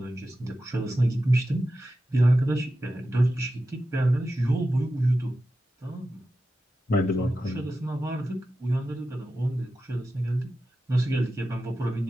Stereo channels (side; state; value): both; normal; correlation 0.92